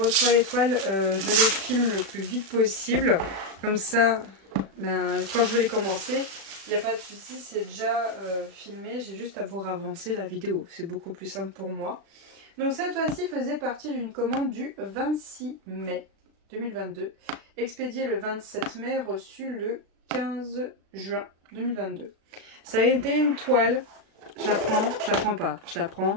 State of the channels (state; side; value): late; left; 36 ms